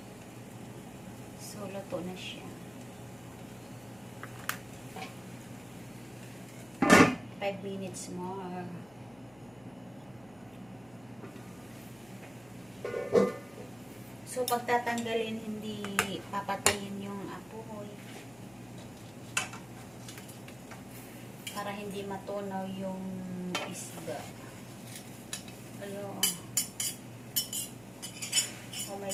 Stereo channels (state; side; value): noise; left; hum, 24 dB below the sound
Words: So, luto na siya. 5 minutes more. So, pagtatanggalin, hindi papatayin yung apoy. Para hindi matunaw yung isda. Ano, oh my